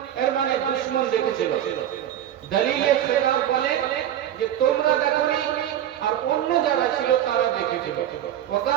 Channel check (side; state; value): left; quieter; 11.1 dB